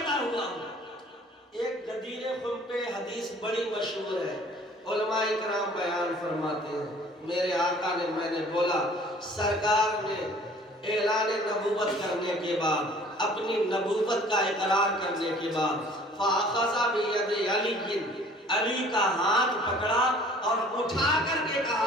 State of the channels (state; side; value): normal; both; correlation 0.52